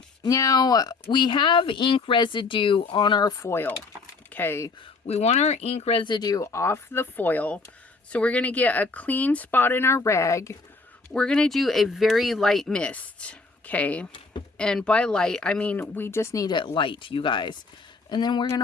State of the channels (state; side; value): quieter; right; 4.0 dB